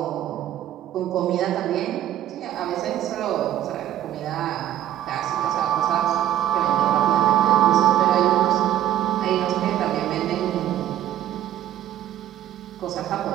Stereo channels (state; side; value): quieter; left; 12.1 dB